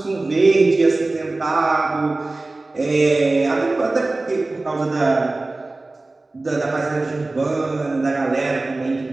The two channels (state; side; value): quieter; left; 3.1 dB